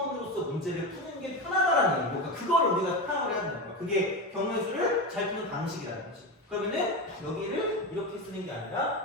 문제를 푸는 게 편하다라는 얘기고 그러니까 그걸 우리가 파악을 해야 된다는 거야. 그게 경우의 잘 푸는 방식이라는 거지. 그러면은 여기를 이렇게 쓰는 게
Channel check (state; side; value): normal; both; correlation 0.19